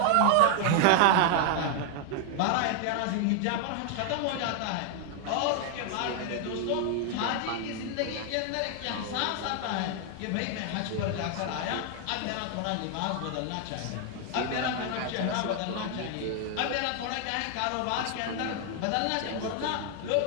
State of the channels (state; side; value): different; both; correlation 0.00